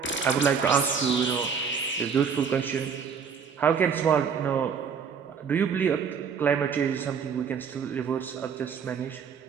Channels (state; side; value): quieter; left; 6.6 dB